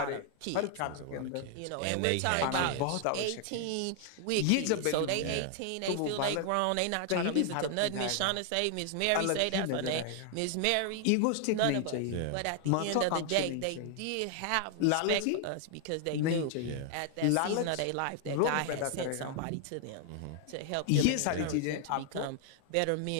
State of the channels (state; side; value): different; both; correlation 0.00